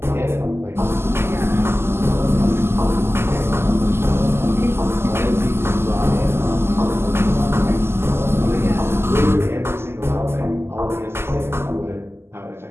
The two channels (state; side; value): late; left; 0.12 ms